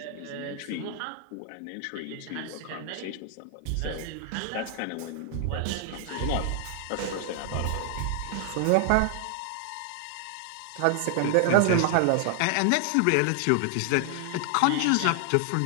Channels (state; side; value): different; both; correlation 0.00